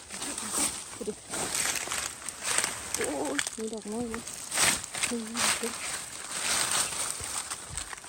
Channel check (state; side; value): identical; both; correlation 1.00